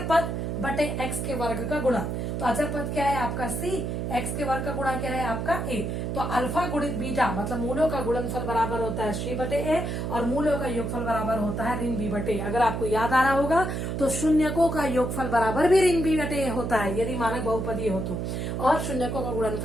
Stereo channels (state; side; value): noise; right; hum, 2 dB below the sound